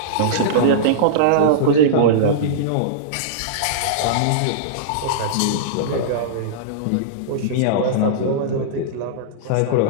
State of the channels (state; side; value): different; both; correlation -0.03